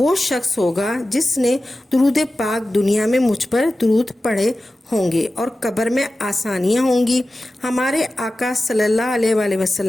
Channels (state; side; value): normal; both; correlation 0.95